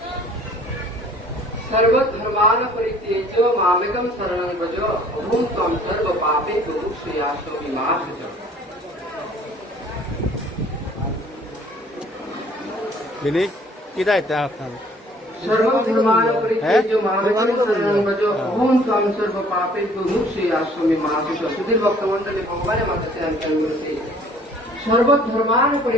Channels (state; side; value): normal; both; correlation 0.55